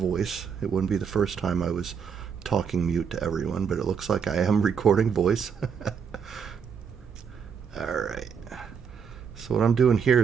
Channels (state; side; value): quieter; left; 6.7 dB